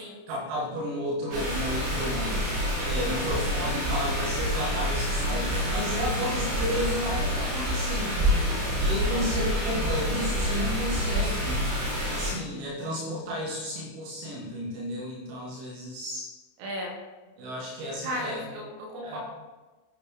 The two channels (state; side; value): late; left; 31 ms